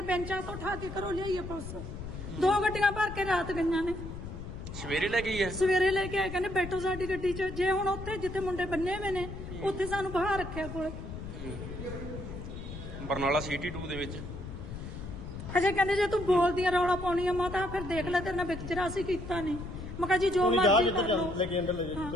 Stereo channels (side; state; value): left; noise; rumble, 9 dB below the sound